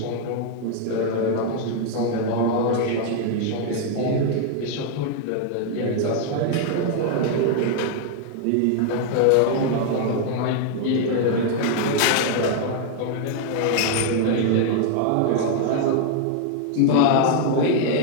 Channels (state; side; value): different; both; correlation 0.00